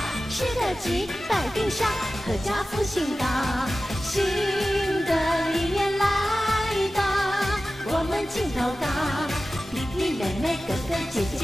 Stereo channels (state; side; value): normal; both; correlation 0.95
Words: 吃得吉，百病消，阖家福星高。新的一年来到，我们劲头高，弟弟妹妹、哥哥姐